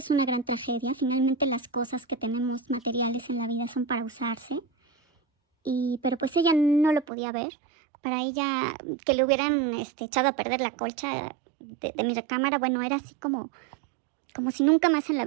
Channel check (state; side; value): drops out; left; at 7.1 s